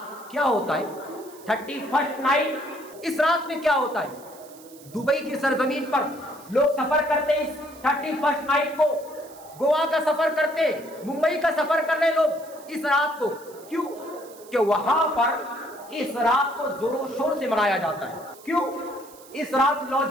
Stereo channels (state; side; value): noise; right; hiss, 22 dB below the sound